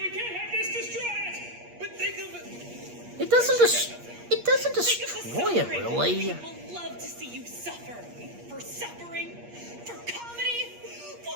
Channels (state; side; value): late; left; 8.5 ms